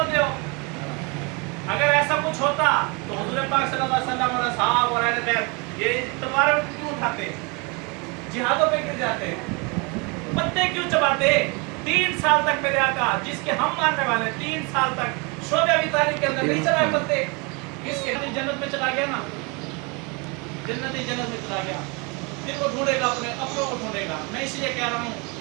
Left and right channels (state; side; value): quieter; left; 30.4 dB